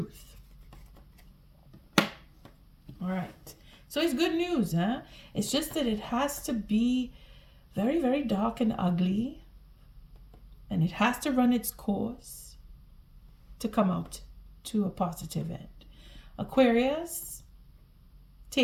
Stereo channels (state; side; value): identical; both; correlation 1.00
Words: All right. So it's good news, It's just that it has to be very, very dark and ugly. And it has to run its course to come out to a positive end. Aquarius,